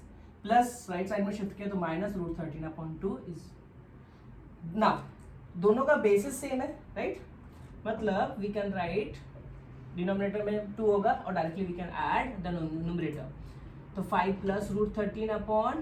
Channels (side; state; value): both; identical; correlation 1.00